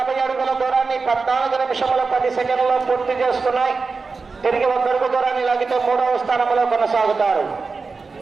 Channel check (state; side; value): quieter; left; 4.4 dB